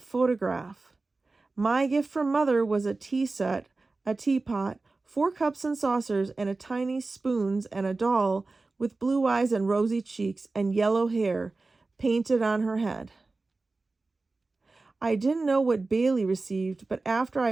My gift from Mother was a tea set, a teapot, 4 cups and saucers, and a tiny spoons, and a doll with blue eyes and rosy cheeks and yellow hair painted on her head. I didn't know what Bailey received, but after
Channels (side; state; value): left; quieter; 3.5 dB